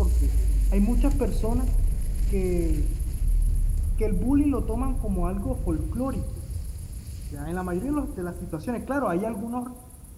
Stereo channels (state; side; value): identical; both; correlation 1.00